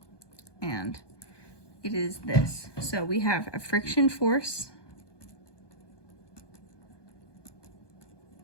And it is this. So we have a friction force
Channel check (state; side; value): late; right; 1.2 ms